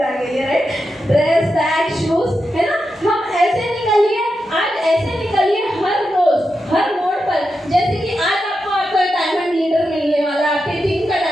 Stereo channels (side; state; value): both; normal; correlation 0.88